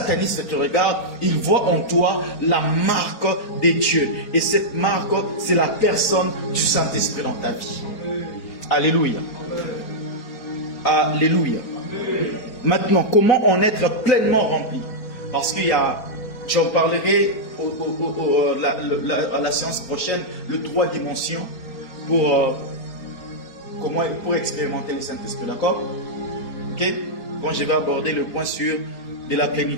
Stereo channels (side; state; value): right; late; 4.4 ms